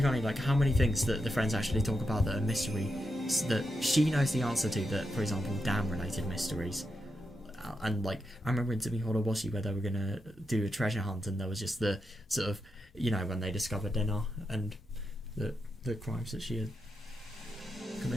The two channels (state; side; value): normal; both; correlation 0.86